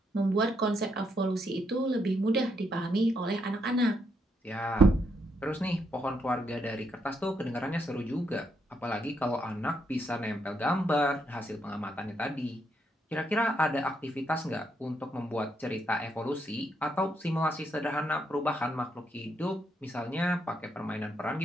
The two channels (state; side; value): normal; both; correlation 0.77